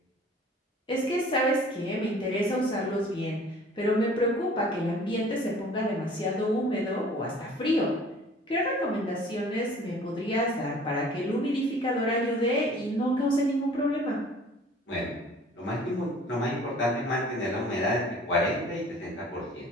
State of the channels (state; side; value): normal; both; correlation 0.50